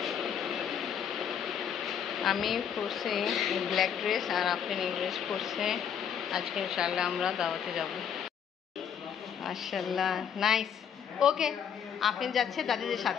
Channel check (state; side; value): quieter; right; 8.2 dB